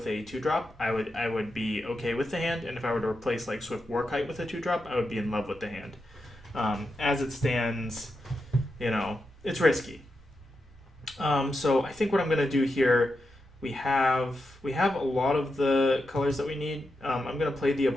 a 2-drop, I would be okay with the hand, and if I were to replace like Swift Warkite with a 2-drop, I would be in love with the hand. As it stands, it's risky. So I think what I'm gonna do here, we have a lot of the colors that we need. I'm gonna play the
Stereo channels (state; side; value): normal; both; correlation 0.87